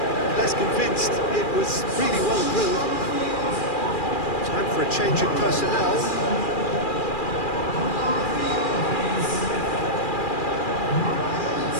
less convinced. It was really well drilled. Time for a change in personnel.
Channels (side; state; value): right; late; 2.4 ms